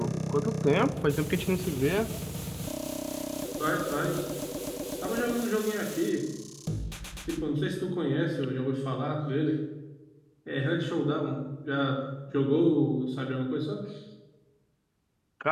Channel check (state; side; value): identical; both; correlation 1.00